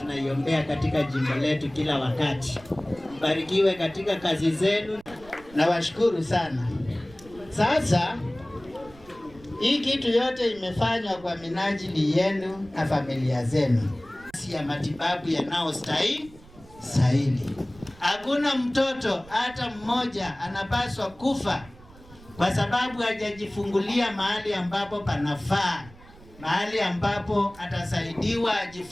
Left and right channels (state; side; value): noise; right; rumble, 22 dB below the sound